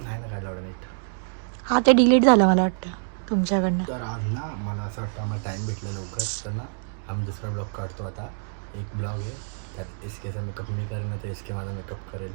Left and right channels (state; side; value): silent; left; digital silence